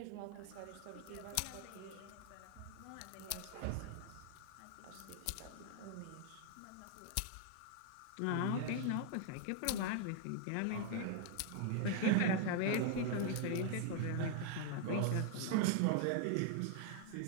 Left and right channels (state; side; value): different; both; correlation 0.00